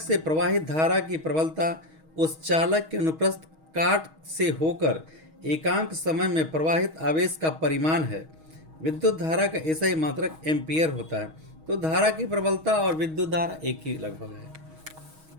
से प्रवाहित धारा की प्रबलता उस चालक के अनुप्रस्थ काट से होकर एकांक समय में प्रवाहित आवेश का परिमाण है। विद्युत धारा का ऐसा ही मात्रक एम्पियर होता है। तो धारा की प्रबलता और विद्युत धारा एक ही लगभग है।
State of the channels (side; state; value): left; late; 6.3 ms